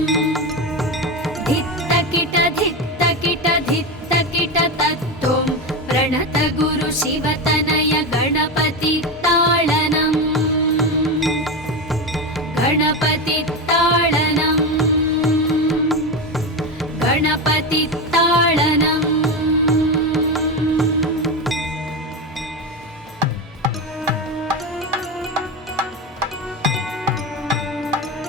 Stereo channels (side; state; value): both; normal; correlation 0.17